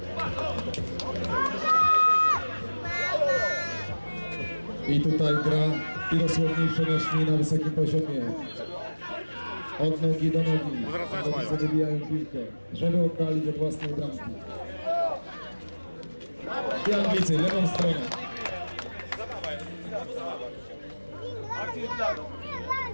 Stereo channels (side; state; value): both; inverted; correlation -1.00